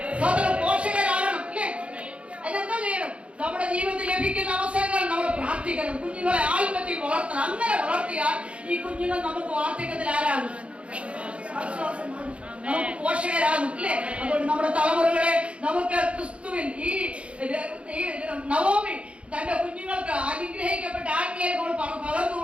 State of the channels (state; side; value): late; left; 0.061 ms